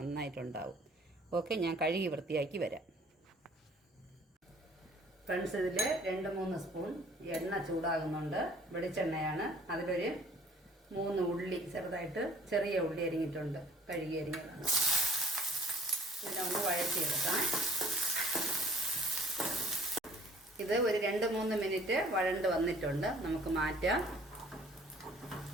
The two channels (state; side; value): normal; both; correlation 0.55